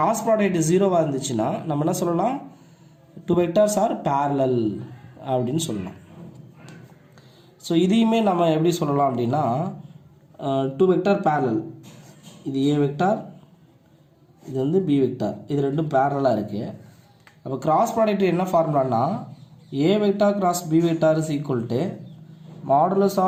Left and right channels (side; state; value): both; identical; correlation 1.00